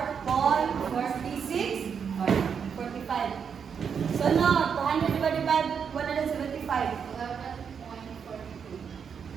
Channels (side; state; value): left; quieter; 6.9 dB